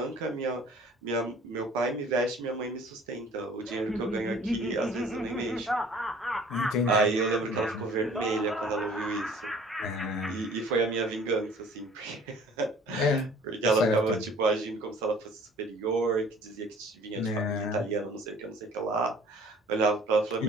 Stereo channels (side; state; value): both; normal; correlation 0.52